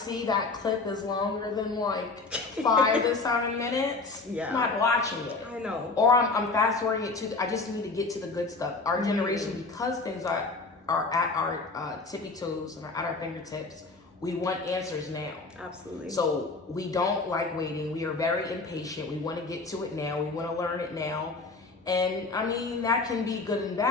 that clip is longer than like 5 to 7 minutes, I'm not watching it. I know. Or I'm fast forwarding it to, I just need to get to the good stuff. Our generation, because things are at our tippy toes and are at our fingertips, we want answers now. Absolutely. So we don't like waiting. We are very impatient. We want to get to it now. We want to learn it now. And I mean, that can be good and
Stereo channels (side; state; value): right; quieter; 3.8 dB